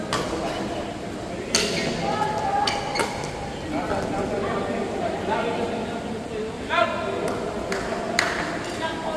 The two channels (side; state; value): both; identical; correlation 1.00